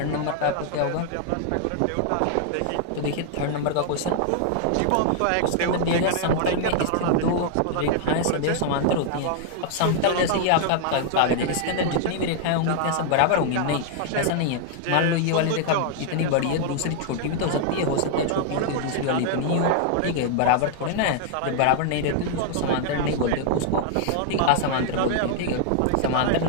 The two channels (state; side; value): different; both; correlation 0.00